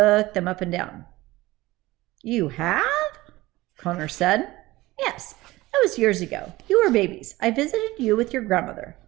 them up and down. "You have?" Connor said. "Yes, that was years ago. You were babies. I visited you with your grandmother,"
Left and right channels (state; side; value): quieter; left; 18.9 dB